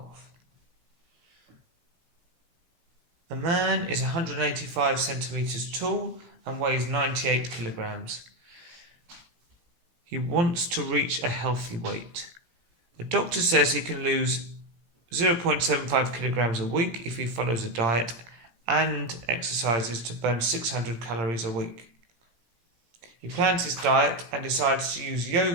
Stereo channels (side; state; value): left; late; 17 ms